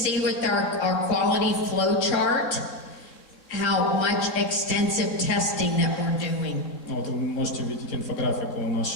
with our quality flow chart how much extensive testing that we're doing. Вот вы можете видеть инфографику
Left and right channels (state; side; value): late; right; 3.6 ms